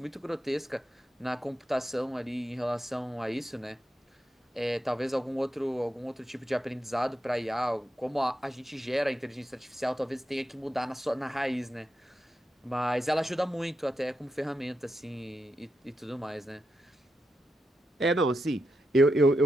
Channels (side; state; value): both; normal; correlation 0.86